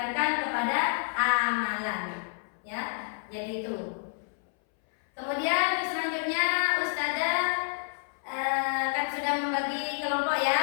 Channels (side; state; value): right; silent; 58 dB below the other